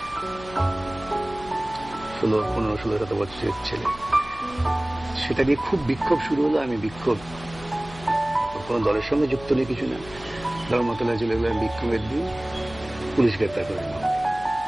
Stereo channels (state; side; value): noise; left; hum, 17 dB below the sound